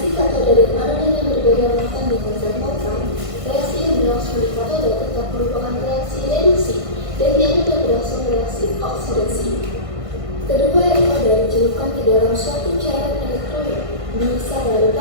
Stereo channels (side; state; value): left; late; 1.5 ms